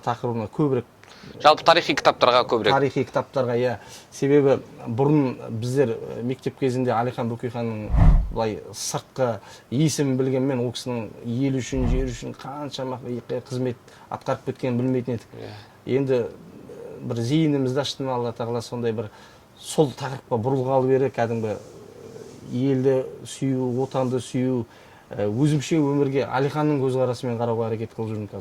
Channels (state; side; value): identical; both; correlation 1.00